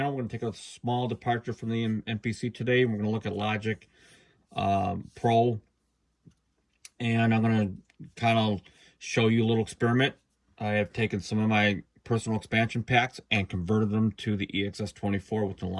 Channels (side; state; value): both; identical; correlation 1.00